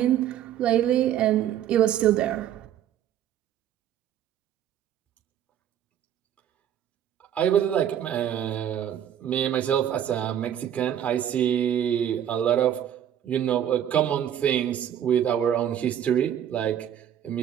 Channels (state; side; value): quieter; left; 10.2 dB